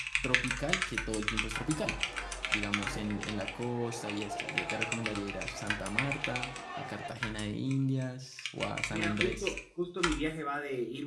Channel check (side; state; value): both; identical; correlation 1.00